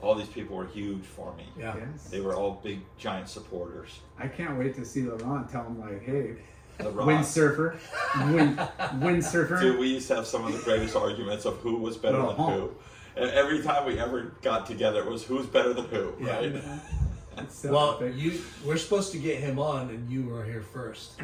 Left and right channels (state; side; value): identical; both; correlation 1.00